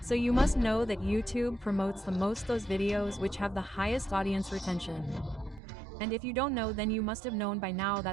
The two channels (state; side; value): drops out; left; at 5.6 s